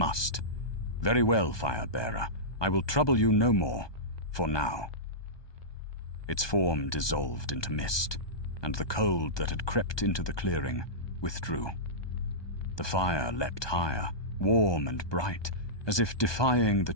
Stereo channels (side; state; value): right; late; 1.2 ms